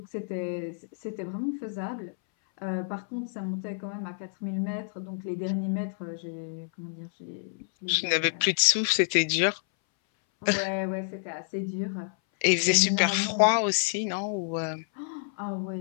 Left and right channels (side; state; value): right; silent; 59 dB below the other